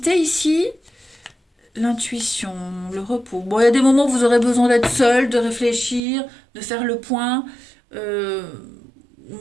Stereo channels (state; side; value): drops out; left; at 6.0 s